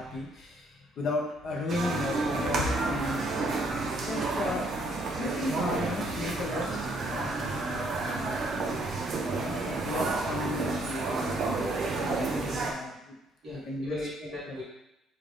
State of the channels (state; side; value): normal; both; correlation 0.68